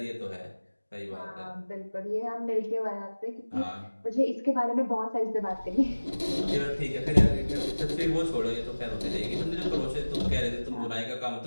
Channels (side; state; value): both; inverted; correlation -1.00